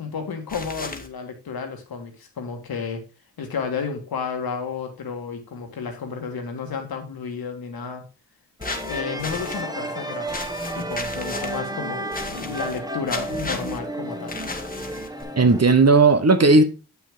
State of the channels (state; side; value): normal; both; correlation 0.09